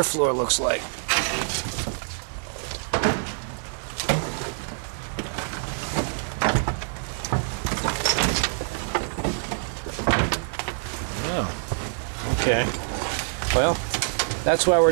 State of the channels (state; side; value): silent; left; 61 dB below the other